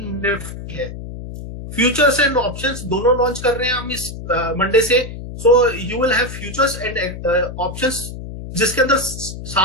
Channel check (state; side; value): noise; left; hum, 10 dB below the sound